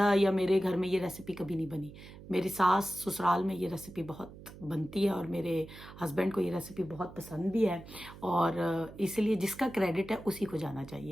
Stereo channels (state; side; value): noise; right; hum, 17 dB below the sound